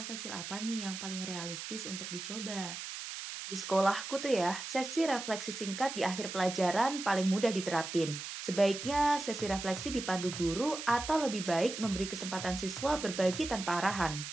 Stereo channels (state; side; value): noise; right; hiss, 8 dB below the sound